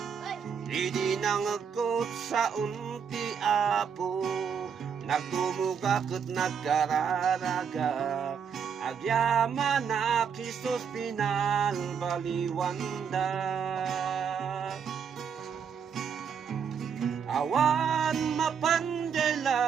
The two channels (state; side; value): quieter; left; 7.0 dB